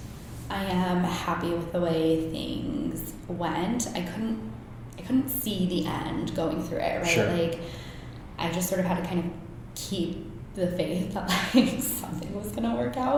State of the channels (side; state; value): both; identical; correlation 1.00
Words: I am happy with the way things went. I couldn't see the end going through it, right? Sure. Like, I just sort of had to kind of keep the faith that like something was gonna work